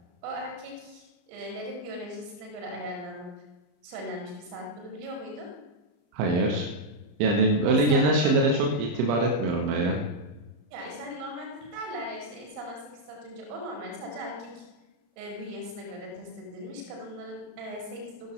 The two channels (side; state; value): left; late; 34 ms